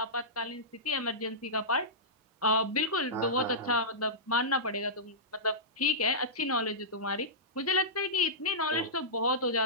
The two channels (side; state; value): both; normal; correlation -0.16